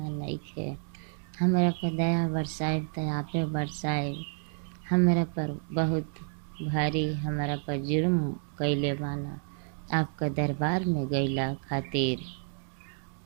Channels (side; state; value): left; silent; 58 dB below the other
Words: नइखे। हमरा पर दया बरसाइब त आपे बरसाइब, हमरा पर बहुत भारी हमरा पर जुर्म कैले बाना, आपका दरबार में गईला खातिर।